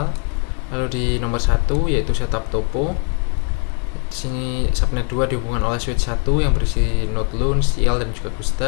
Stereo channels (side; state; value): right; quieter; 38.3 dB